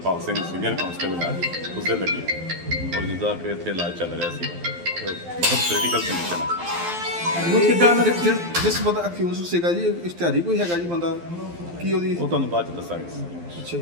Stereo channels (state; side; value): late; left; 12 ms